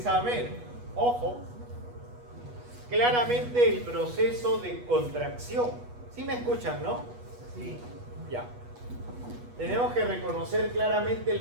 ojo, claramente el proceso de contracción. ¿Sí me escuchan, no? Sí. Ya. Tenemos que reconocer claramente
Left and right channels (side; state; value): left; late; 8.2 ms